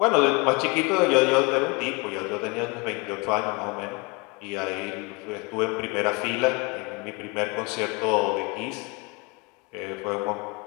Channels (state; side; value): quieter; right; 28.8 dB